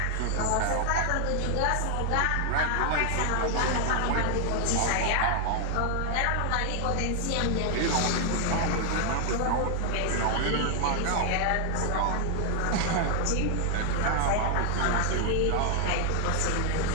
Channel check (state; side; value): different; both; correlation 0.00